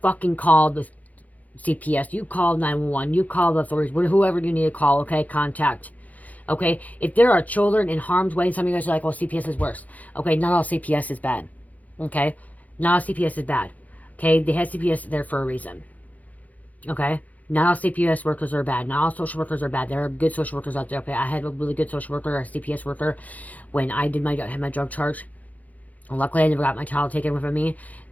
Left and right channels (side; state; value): right; late; 0.077 ms